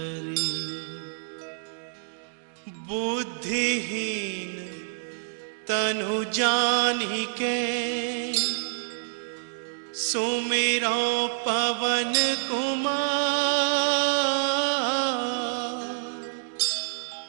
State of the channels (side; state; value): left; silent; digital silence